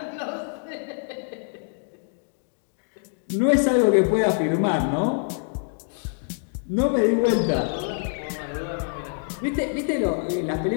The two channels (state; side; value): silent; right; 62 dB below the other